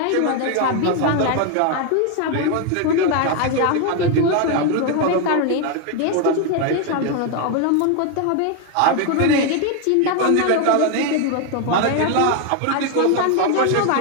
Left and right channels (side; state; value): both; different; correlation 0.01